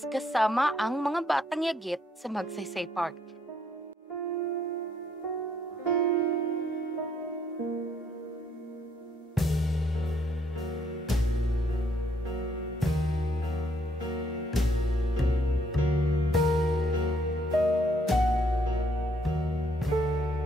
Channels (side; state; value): both; normal; correlation 0.69